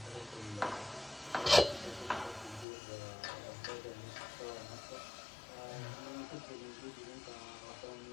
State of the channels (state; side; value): drops out; right; at 2.7 s